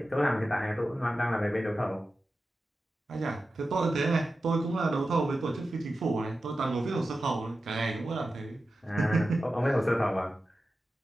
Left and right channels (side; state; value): both; normal; correlation 0.93